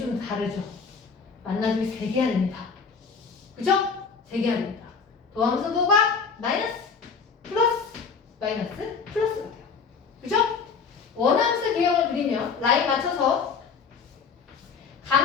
다르죠. 만나주기 3개야 됩니다. 그죠? 3개야 됩니다. 도함수도가 마이너스, 플러스, 마이너스, 플러스가 돼요. 그죠? 원함수 개형을 그리면 라인 맞춰서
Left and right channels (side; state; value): right; quieter; 5.6 dB